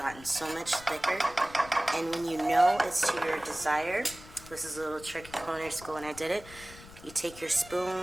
so much thicker. And when you know it's to your desire, this is a little trick in culinary school and I did it. You take your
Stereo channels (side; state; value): left; noise; rumble, 18 dB below the sound